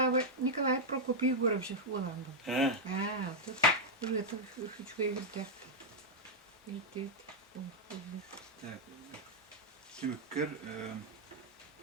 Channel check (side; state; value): both; normal; correlation -0.02